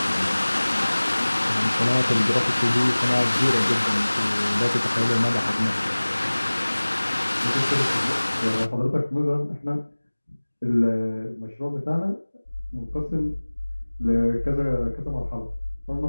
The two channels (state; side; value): inverted; both; correlation -1.00